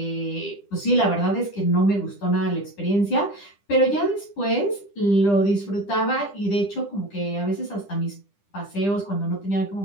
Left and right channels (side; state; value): right; late; 10 ms